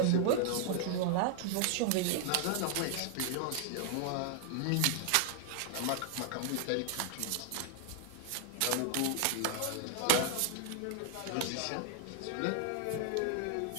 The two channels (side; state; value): both; different; correlation 0.00